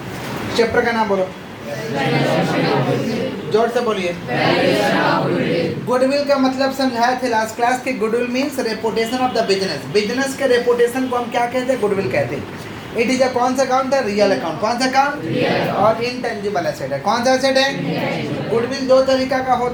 चैप्टर का नाम बोलो, जोर से बोलिए। गुडविल का मतलब समझाया थे लास्ट क्लास की। Goodwill means reputation of the business. Business के रेपुटेशन को हम क्या कहते हैं? गुडविल कहते हैं। इट इज अ कौन सा अकाउंट है? Real account. कौन सा अकाउंट? और इनटेंजिबल एसेट है। कौन सा एसेट है? गुडविल दो तरीका का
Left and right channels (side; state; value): both; identical; correlation 1.00